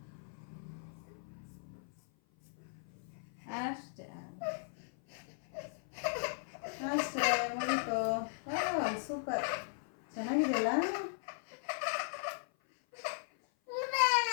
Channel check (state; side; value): silent; right; 53 dB below the other